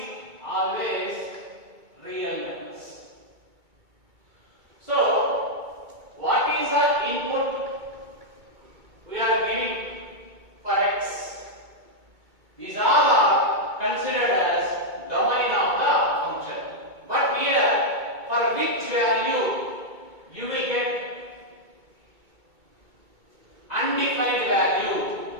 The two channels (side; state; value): left; late; 2.2 ms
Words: always real numbers. So, what is the input we are giving for x? These all are considered as domain of the function. But here, for which value you will get undefined value,